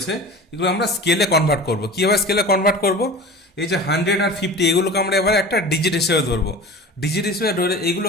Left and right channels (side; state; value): both; normal; correlation 0.36